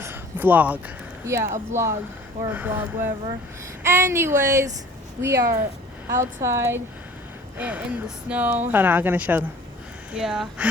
Vlog. yeah, a vlog or a blog, whatever. Anyways, we are outside in the snow. Hold on, I'm gonna show them. Yeah,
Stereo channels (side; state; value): both; normal; correlation 0.49